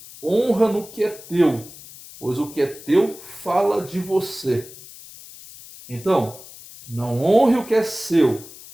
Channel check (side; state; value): left; noise; hiss, 18 dB below the sound